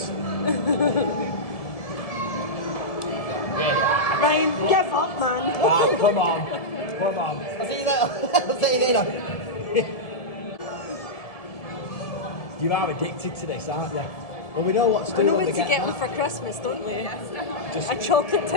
Ryan, give up, man. Right, come on. Come on. I'll see you later. I'll see you later. You are addicted to this, aren't you? Well, we know what to do. We know when what we to get them for Christmas, don't we? Just A chocolate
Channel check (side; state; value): right; late; 1.7 ms